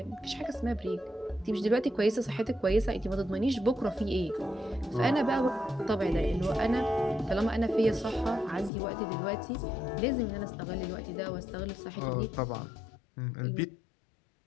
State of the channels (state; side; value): drops out; right; at 8.7 s